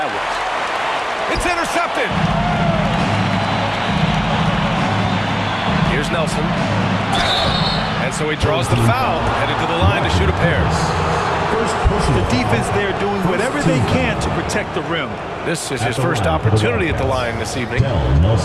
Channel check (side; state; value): both; identical; correlation 1.00